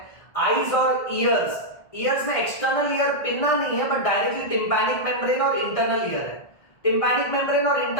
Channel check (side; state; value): right; late; 1.6 ms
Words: आईज और ईयर्स, ईयर्स में एक्सटर्नल ईयर पिन्ना नहीं है बट डायरेक्टली टिम्पैनिक मेम्ब्रेन और इंटरनल ईयर है। टिम्पैनिक मेम्ब्रेन और